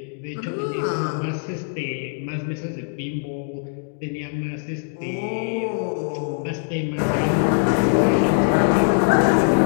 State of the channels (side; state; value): right; silent; digital silence